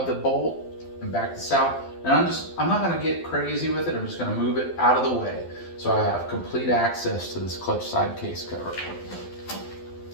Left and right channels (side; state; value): right; late; 12 ms